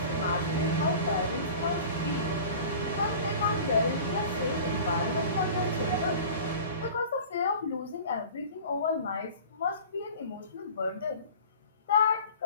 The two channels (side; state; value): both; inverted; correlation -0.40